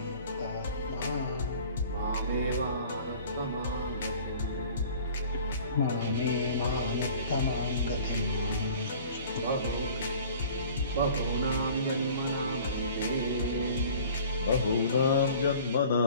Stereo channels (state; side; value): inverted; both; correlation -0.48